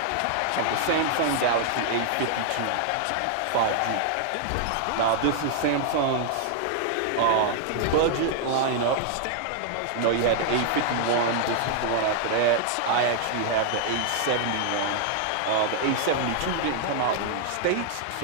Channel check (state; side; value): different; both; correlation -0.01